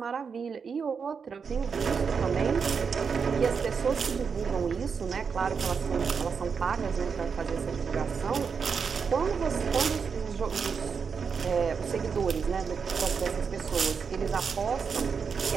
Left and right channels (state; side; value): quieter; left; 5.9 dB